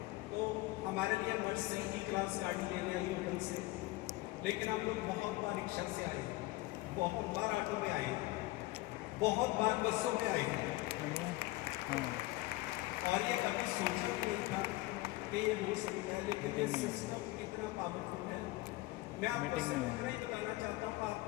तो हमारे लिए बस से ही क्लास गाड़ी लेने आई होटल से, लेकिन हम लोग बहुत बार रिक्शा से आए, बहुत बार ऑटो में आए, बहुत बार बसों में आए हैं और ये कभी सोचा भी नहीं था कि ये हो सकता है। लेकिन ये सिस्टम इतना पावरफुल है। मैं आपको सिर्फ इतना ही बताना चाहता हूँ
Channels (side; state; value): right; quieter; 19.7 dB